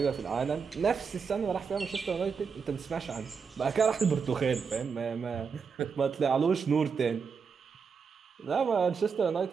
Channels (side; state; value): left; quieter; 5.8 dB